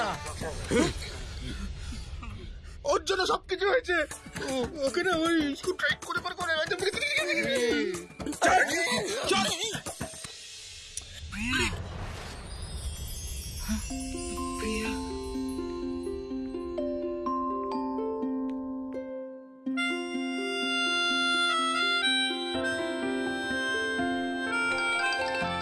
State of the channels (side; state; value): both; identical; correlation 1.00